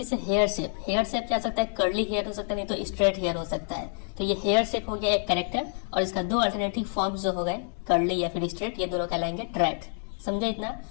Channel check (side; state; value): right; silent; 60 dB below the other